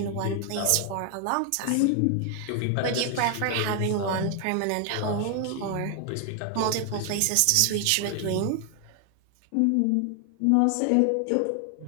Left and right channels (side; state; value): both; different; correlation 0.00